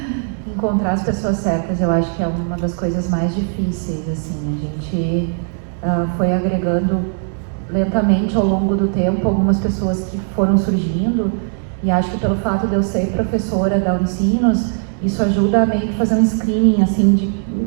Encontrar as pessoas certas, eu acho que é uma das coisas mais difíceis, assim. A gente foi agregando lentamente ao longo do tempo algumas pessoas que foram surgindo, e acho que pelo fato de eu ser professora da Unicinos, isso ajuda a meio que fazer um screening assim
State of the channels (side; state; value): left; silent; 66 dB below the other